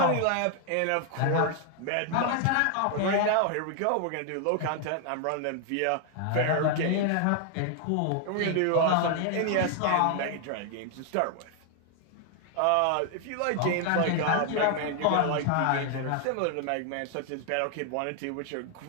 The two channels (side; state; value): both; different; correlation 0.00